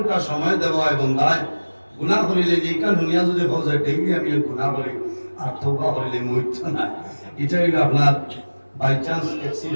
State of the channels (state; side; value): inverted; both; correlation -1.00